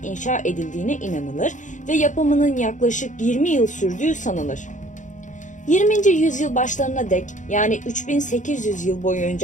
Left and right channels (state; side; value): late; right; 0.36 ms